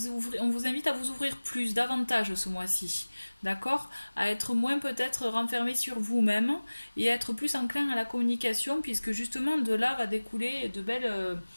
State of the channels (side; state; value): both; inverted; correlation -1.00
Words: invite à vous ouvrir plus, davantage ce mois-ci, d'accord? À être moins peut-être renfermé sur vous-même et à être plus enclin à la communication, puisque justement de là va découler de belles,